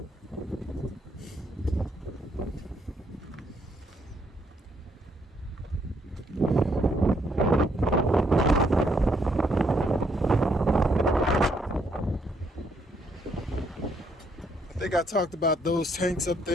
think I talked about those tanks up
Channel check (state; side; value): normal; both; correlation 0.71